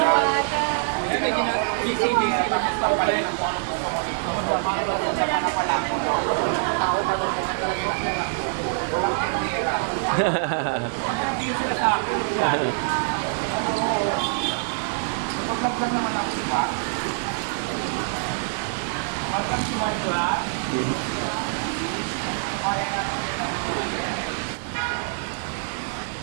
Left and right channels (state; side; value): silent; left; digital silence